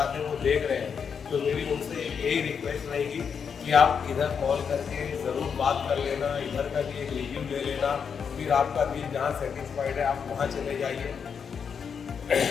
हैं वो देख रहे हैं, तो मेरी उनसे यही रिक्वेस्ट रहेगी कि आप इधर कॉल करके ज़रूर बात कर लेना, इधर का भी एक रिव्यू ले लेना, फिर आपका दिल जहाँ सेटिस्फाइड है आप वहाँ चले जाइए।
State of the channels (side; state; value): right; quieter; 6.7 dB